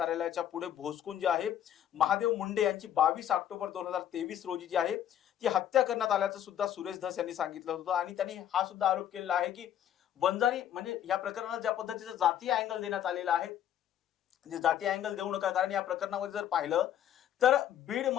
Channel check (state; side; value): quieter; right; 10.4 dB